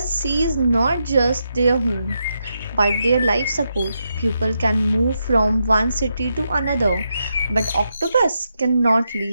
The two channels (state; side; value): inverted; both; correlation -0.84